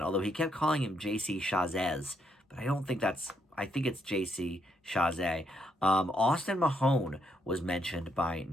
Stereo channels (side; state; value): both; normal; correlation 0.77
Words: although he kept calling him J.C. Chazez, but I don't think that's, I think it's J.C. Chazé. Austin Mahone was mentioned by